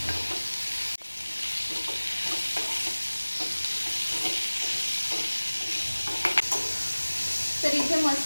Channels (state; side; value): inverted; both; correlation -1.00